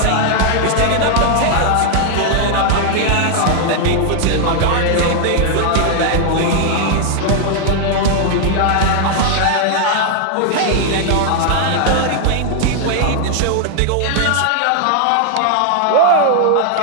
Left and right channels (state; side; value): different; both; correlation 0.00